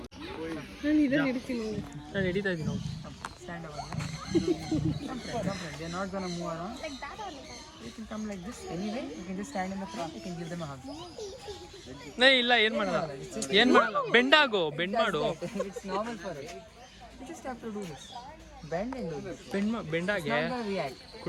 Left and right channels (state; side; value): identical; both; correlation 1.00